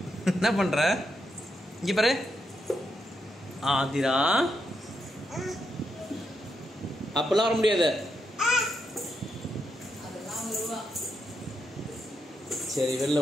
என்ன பண்ணுற? இங்கே பாரு ஆதிரா. அப்பெல்லாம் வர முடியாது. சரி வெளில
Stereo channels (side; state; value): both; normal; correlation 0.82